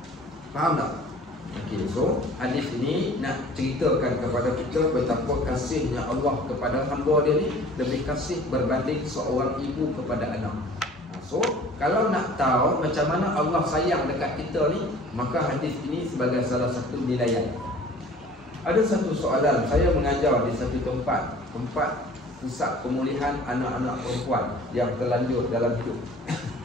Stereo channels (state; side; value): normal; both; correlation 0.48